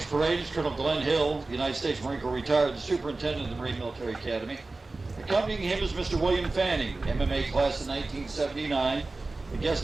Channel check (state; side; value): quieter; left; 3.3 dB